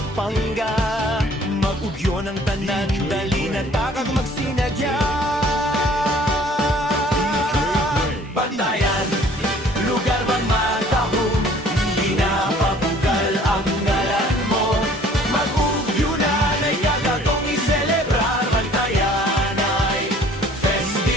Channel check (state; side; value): normal; both; correlation 0.54